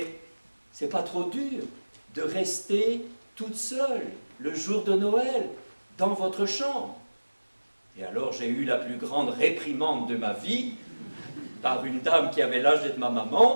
c'est pas trop dur de rester toute seule le jour de Noël dans votre chambre? Et alors j'ai eu la plus grande réprimande de ma vie par une dame qui avait l'âge d'être ma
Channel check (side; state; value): both; inverted; correlation -1.00